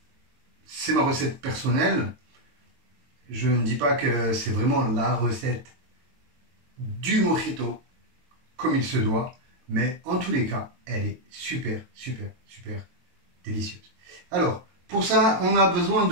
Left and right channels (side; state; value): left; late; 22 ms